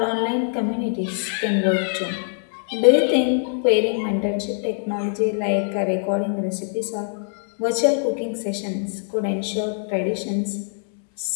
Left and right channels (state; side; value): silent; right; 63 dB below the other